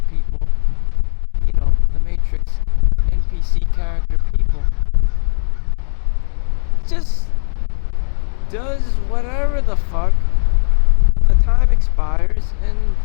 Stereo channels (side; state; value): right; silent; 62 dB below the other